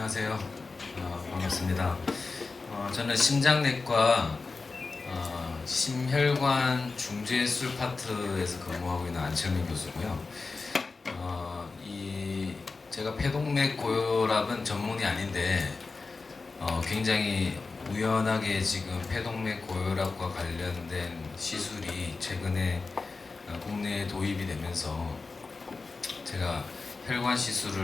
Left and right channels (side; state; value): right; quieter; 4.1 dB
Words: 안녕하세요. 반갑습니다. 저는 심장내과 심혈관 중재술 파트에서 근무하고 있는 안철민 교수고요. 제가 폐동맥 고혈압은 전문이 아닌데 굉장히 우연하게 지금 폐동맥 고혈압과 관련된 시술이 최근에 국내에 도입이 되면서 제가 혈관